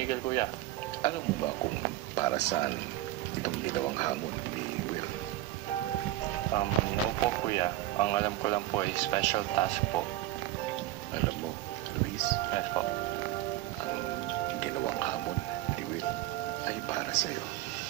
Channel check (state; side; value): quieter; left; 15.0 dB